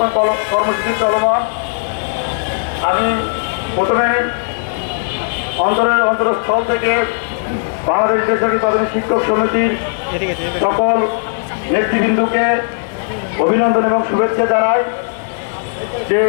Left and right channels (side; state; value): right; silent; digital silence